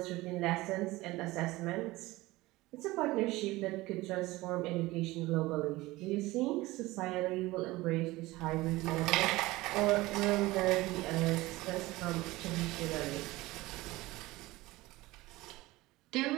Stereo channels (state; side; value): quieter; left; 19.5 dB